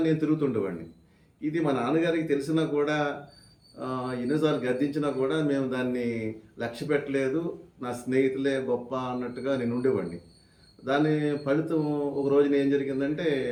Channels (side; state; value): both; identical; correlation 1.00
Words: నేను తిరుగుతుండేవాడిని. ఇది మా నాన్నగారికి తెలిసినా కూడా, ఎన్నోసార్లు గద్దించినా కూడా మేము దాన్ని లక్ష్య పెట్టలేదు. నా స్నేహితులే గొప్ప అన్నట్టుగా నేను ఉండేవాడిని. దాని ఫలితం ఒక రోజున ఏం జరిగిందంటే,